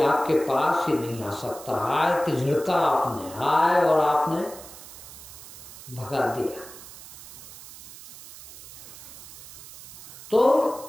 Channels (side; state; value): right; noise; hiss, 16 dB below the sound